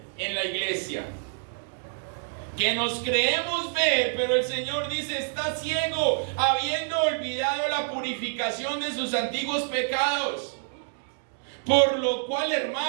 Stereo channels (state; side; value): silent; left; digital silence